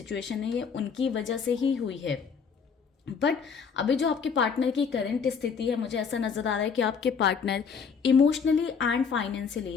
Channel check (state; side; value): quieter; right; 6.1 dB